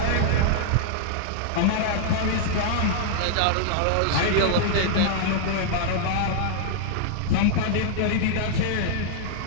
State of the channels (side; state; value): both; different; correlation -0.01